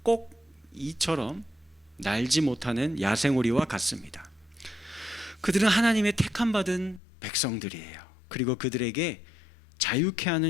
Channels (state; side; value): drops out; right; at 7.0 s